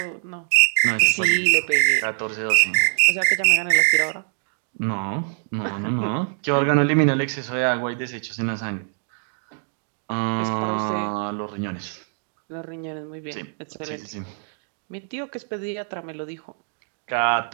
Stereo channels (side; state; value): left; silent; digital silence